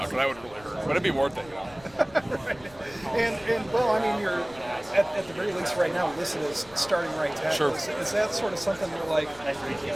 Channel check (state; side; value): noise; left; rumble, 23 dB below the sound